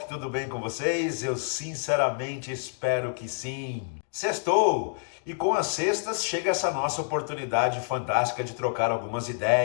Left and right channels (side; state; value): right; silent; digital silence